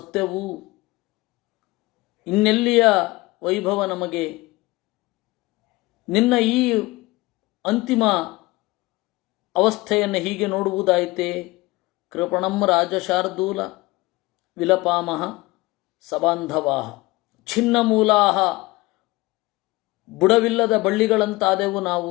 ಇನ್ನೆಲ್ಲಿಯ ವೈಭವ ನಮಗೆ? ನಿನ್ನ ಈ ಅಂತಿಮ ಅವಸ್ಥೆಯನ್ನು ಹೀಗೆ ನೋಡುವುದಾಯಿತೆ? ಕೃಪಣಂ ರಾಜಶಾರ್ದೂಲ ವಿಲಪಾಮಹ ಸಬಾಂಧವಾಹ ಛಿನ್ನಮೂಲಾಹ. ಬುಡವಿಲ್ಲದ ಬಳ್ಳಿಗಳಂತಾದೆವು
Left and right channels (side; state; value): right; quieter; 21.4 dB